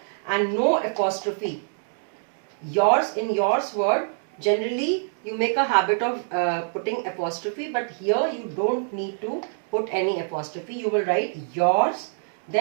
and no apostrophe. Yours, in yours word, Generally you make a habit of putting apostrophe, but here you don't need to put any apostrophe. You will write yours,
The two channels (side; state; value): left; silent; digital silence